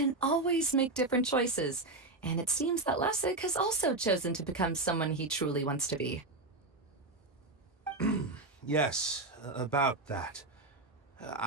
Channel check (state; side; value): quieter; left; 3.1 dB